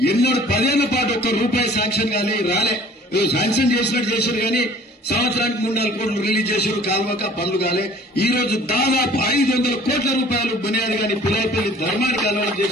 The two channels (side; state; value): both; normal; correlation 0.51